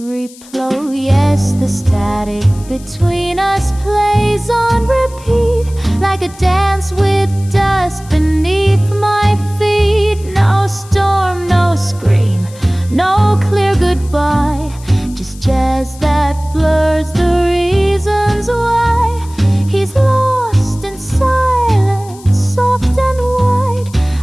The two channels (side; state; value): left; noise; hiss, 22 dB below the sound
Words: Yes, the static between us plays on repeat, like a dance with dust beneath my feet. No storm, no scream, no clear goodbye, just jazz that blurs the reasons why. He's lost in silence, soft and wide,